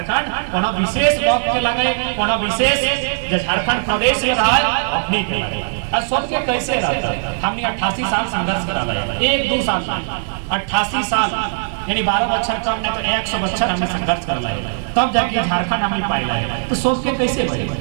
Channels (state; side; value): silent; left; digital silence